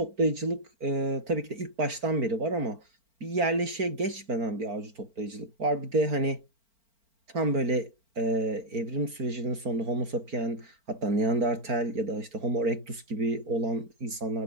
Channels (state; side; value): late; left; 4.4 ms